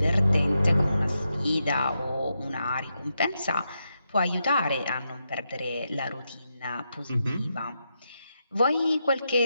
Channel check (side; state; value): both; inverted; correlation -0.85